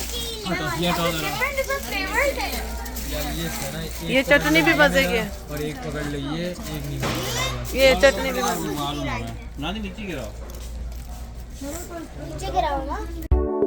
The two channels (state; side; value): identical; both; correlation 1.00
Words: ये चटनी भी मज़े की है, और एक पकड़ लीजिए, एक नहीं पकड़ेगा। ये चटनी भी मज़े की है। मालूम है ना, नीचे गिराओ। नीचे गिरा होगा।